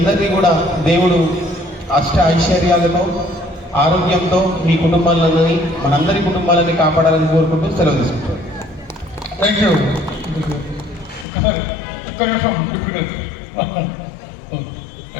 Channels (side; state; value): right; drops out; at 11.2 s